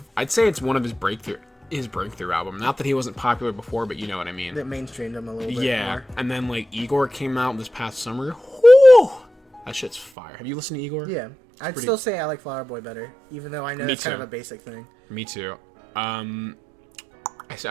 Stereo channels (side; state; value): left; drops out; at 10.1 s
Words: I'd say it's one of his breakthrough album. Not that he wasn't popular before, but you know what I mean. That mainstreamed him a little bit Yeah, more. and then like Igor came out this past summer. Whew! That shit's fire. Have you listened to Igor? Yeah. I'd pretty- still say I like Flower Boy better, even though I know Me it's kind of too. a basic thing. Me too. I